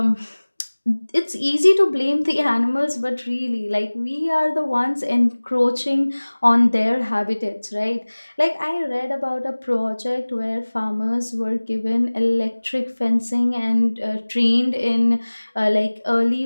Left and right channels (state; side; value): inverted; both; correlation -1.00